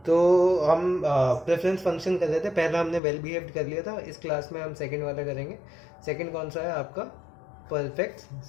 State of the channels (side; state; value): right; drops out; at 3.0 s